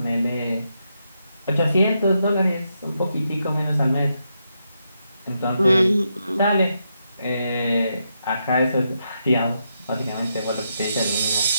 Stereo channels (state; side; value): inverted; both; correlation -0.82